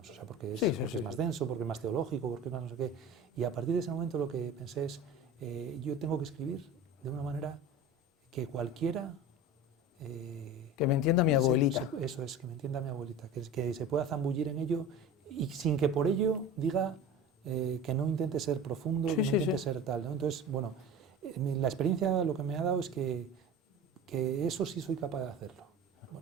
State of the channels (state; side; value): normal; both; correlation 0.34